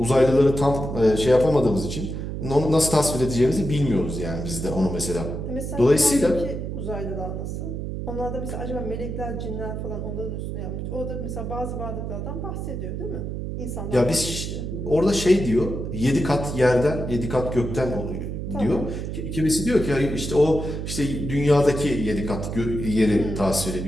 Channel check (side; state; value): right; noise; hum, 5 dB below the sound